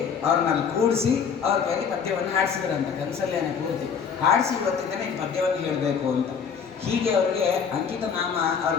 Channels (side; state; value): right; quieter; 6.6 dB